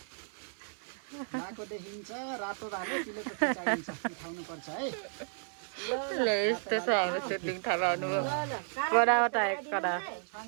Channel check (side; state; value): left; silent; digital silence